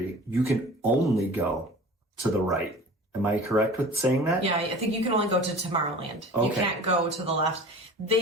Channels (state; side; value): normal; both; correlation 0.40